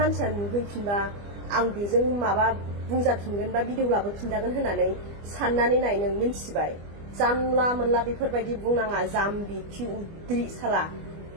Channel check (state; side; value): late; left; 25 ms